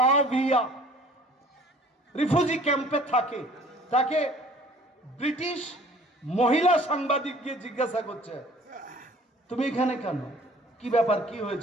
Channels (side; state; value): both; normal; correlation 0.52